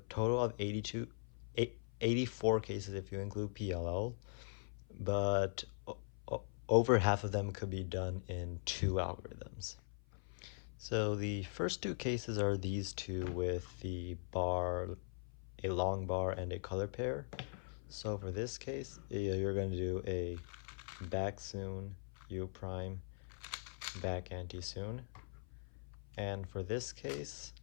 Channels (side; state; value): right; silent; 50 dB below the other